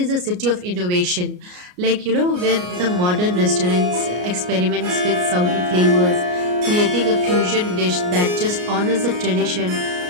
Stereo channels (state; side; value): late; left; 33 ms